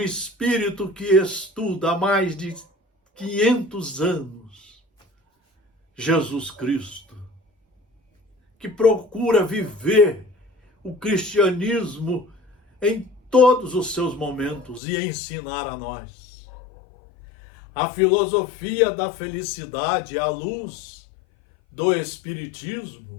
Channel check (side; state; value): right; drops out; at 14.8 s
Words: que estuda há mais de 500 anos Jesus Cristo, que procura viver o cristianismo em todos os seus momentos e ensinar a nós. A filosofia da felicidade, à luz do